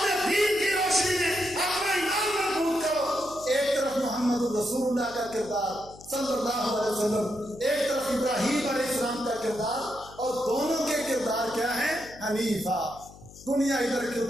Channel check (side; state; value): left; noise; hum, 20 dB below the sound